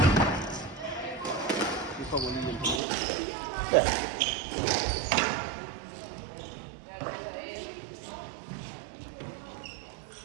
Det kommer lige ind på. Ja.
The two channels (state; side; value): drops out; left; at 2.8 s